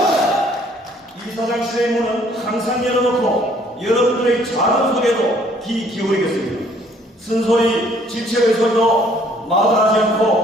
이사장실의 문은 항상 열어놓고 여러분들의 작은 소리에도 귀 기울이겠습니다. 쓴소리, 질책의 소리도 마다하지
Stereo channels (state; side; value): normal; both; correlation 0.61